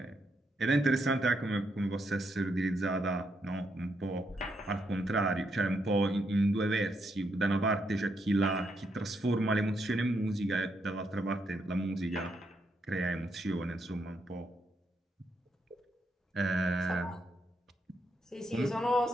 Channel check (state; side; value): normal; both; correlation 0.79